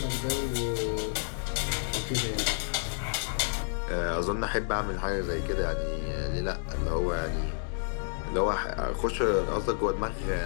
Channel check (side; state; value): right; silent; digital silence